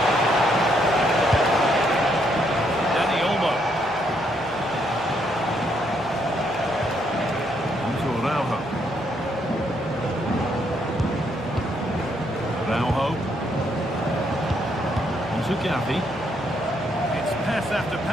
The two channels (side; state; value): both; normal; correlation 0.73